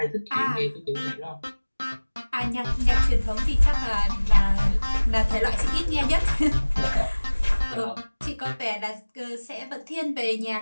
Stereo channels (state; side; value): inverted; both; correlation -1.00